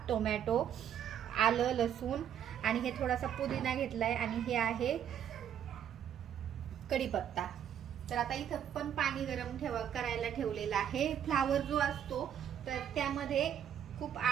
टोमॅटो, आलं, लसूण, आणि हे थोडासा पुदिना घेतलाय, आणि हे आहे कढीपत्ता. तर आता इथं पण पाणी गरम करायला ठेवलेलं आहे. फ्लावर जो असतो तर त्यामध्ये खूप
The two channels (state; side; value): quieter; left; 9.5 dB